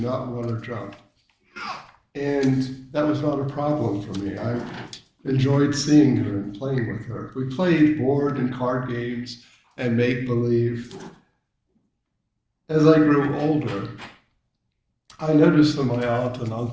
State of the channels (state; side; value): identical; both; correlation 1.00